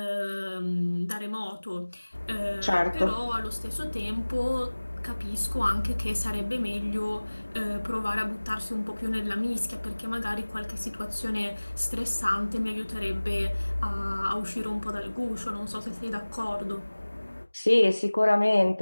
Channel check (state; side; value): inverted; both; correlation -1.00